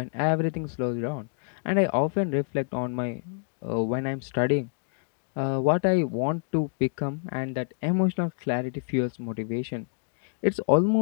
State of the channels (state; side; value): silent; right; 60 dB below the other